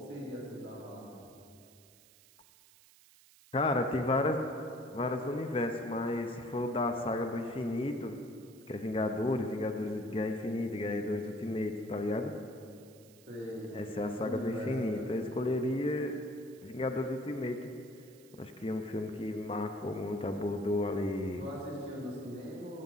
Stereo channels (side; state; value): right; noise; hiss, 25 dB below the sound